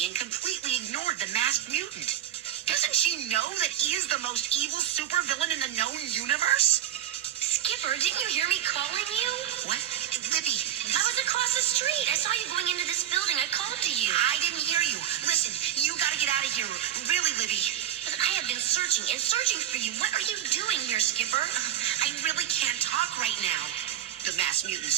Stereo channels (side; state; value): left; quieter; 11.4 dB